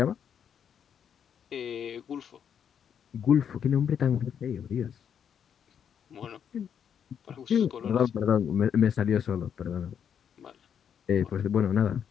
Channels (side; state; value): right; quieter; 8.2 dB